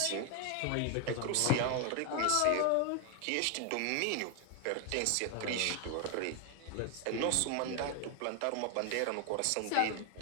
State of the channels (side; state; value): both; different; correlation 0.00